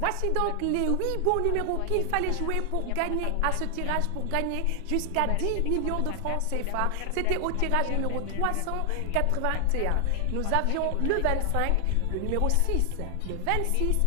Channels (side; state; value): both; different; correlation 0.00